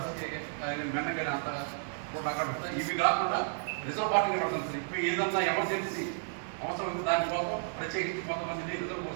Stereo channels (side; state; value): left; silent; 56 dB below the other